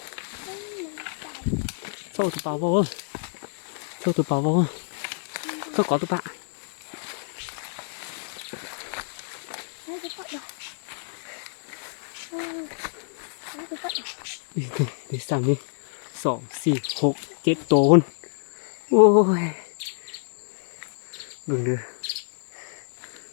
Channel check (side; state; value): right; silent; digital silence